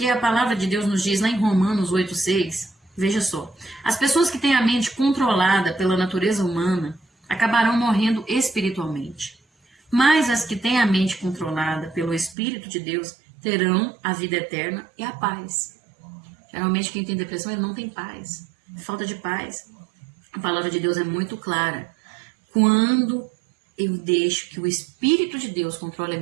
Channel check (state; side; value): drops out; left; at 12.4 s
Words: a palavra de Deus nos diz lá em Romanos 8,6, veja só, as pessoas que têm a mente controlada pela natureza humana acabarão morrendo espiritualmente, mas as que têm a mente controlada pelo Espírito de Deus terão a vida eterna e a paz. Geralmente quem tem depressão ele não tem paz, falta de paz. A palavra de Deus é muito clara. Quando eu deixo que o Espírito de Deus controle a